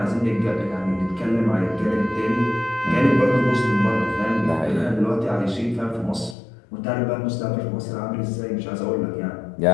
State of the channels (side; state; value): right; drops out; at 6.4 s